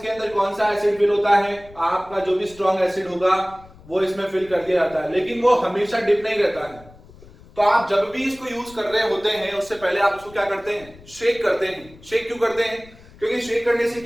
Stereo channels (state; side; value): noise; left; rumble, 22 dB below the sound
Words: अंदर कौन सा एसिड फिल होता है? आपका जो भी स्ट्रॉन्ग एसिड होगा वो इसमें फिल कर दिया जाता है, लेकिन वो हमेशा डिप नहीं रहता है। तो आप जब भी इसको यूज कर रहे होते हैं उससे पहले आप उसको क्या करते हैं? शेक करते हैं। शेक क्यों करते हैं? क्योंकि शेक करने से